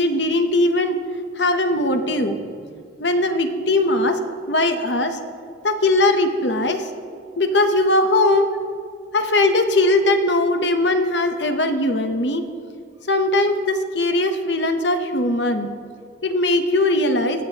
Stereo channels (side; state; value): both; normal; correlation 0.19